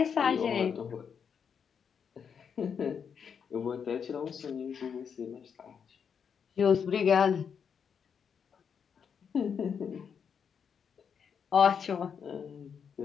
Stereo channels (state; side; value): quieter; right; 7.0 dB